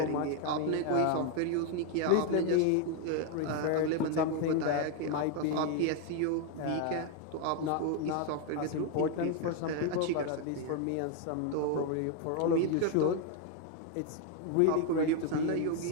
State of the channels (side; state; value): both; different; correlation 0.01